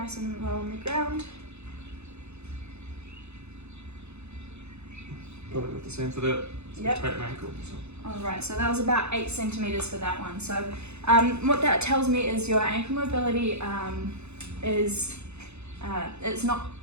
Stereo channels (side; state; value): left; late; 0.81 ms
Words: and low on the ground. Probably got the same for that. Yep. Tight ankle. So. Alright, so that was about 8 centimetres for that one. So what that tells me is your ankle mobility is it's not